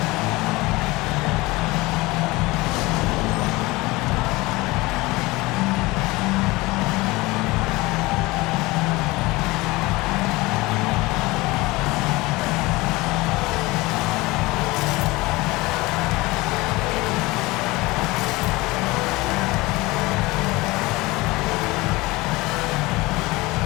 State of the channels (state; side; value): quieter; right; 21.6 dB